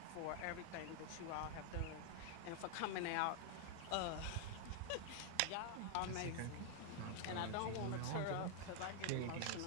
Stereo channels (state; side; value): different; both; correlation 0.00